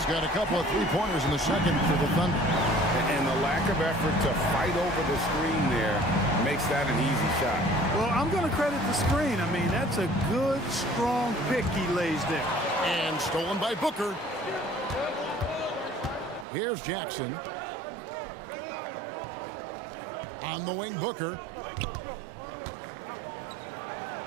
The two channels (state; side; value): drops out; left; at 16.4 s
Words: got a couple of three-pointers in the second for the Thunder. And the lack of effort to fight over the screen there makes that an easy shot. Well, I'm going to credit the screen. I mean, that's a good, strong pick he lays there. And stolen by Booker. Here's Jackson. On the wing, Booker.